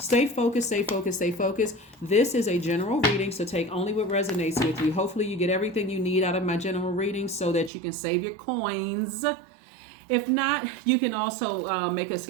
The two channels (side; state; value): left; drops out; at 7.7 s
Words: focused, stay focused, stay focused. This is a general reading, so take only what resonates with you. Hopefully you get everything you need out of my general reading so that you can save your coins. If not, you can also make a